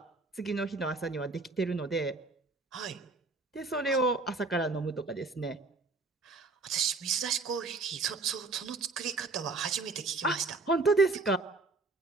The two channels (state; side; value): quieter; left; 3.6 dB